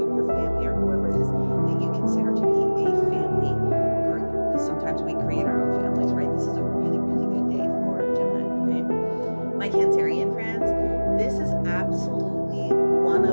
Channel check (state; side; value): inverted; both; correlation -1.00